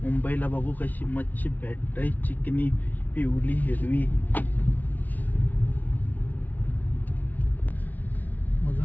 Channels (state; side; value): late; right; 0.079 ms